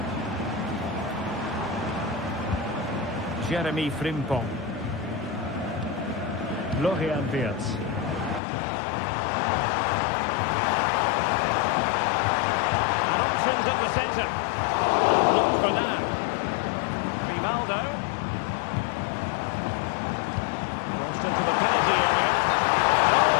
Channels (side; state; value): right; drops out; at 8.4 s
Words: Jeremy Frimpong. Florian Wirtz. And options in the centre. Blocked for now. Grimaldo. Crossed into the penalty area.